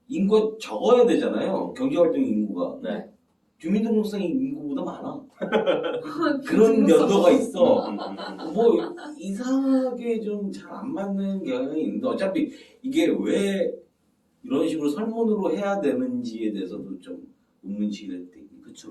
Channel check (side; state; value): both; identical; correlation 1.00